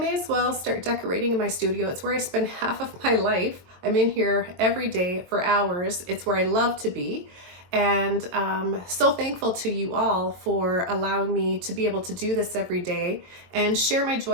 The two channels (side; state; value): left; late; 22 ms